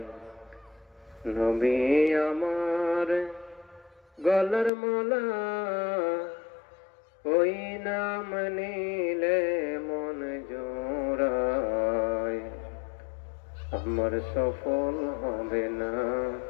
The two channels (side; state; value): right; drops out; at 4.7 s